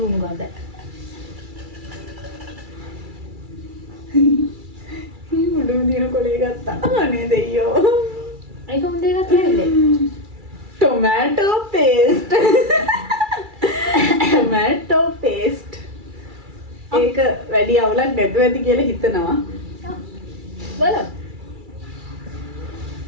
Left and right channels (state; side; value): late; left; 2.3 ms